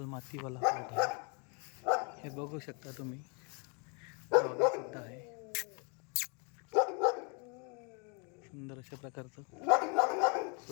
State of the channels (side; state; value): right; quieter; 34.6 dB